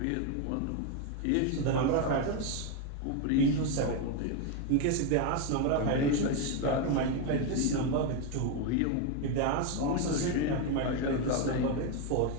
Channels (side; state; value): both; different; correlation 0.02